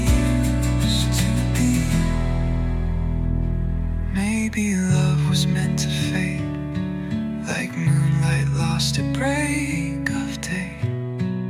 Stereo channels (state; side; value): identical; both; correlation 1.00